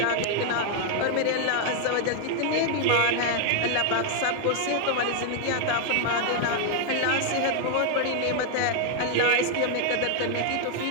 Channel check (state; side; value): different; both; correlation 0.00